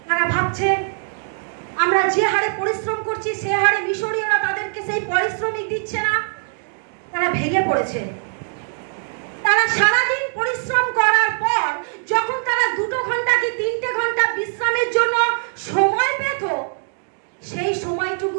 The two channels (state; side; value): silent; left; 63 dB below the other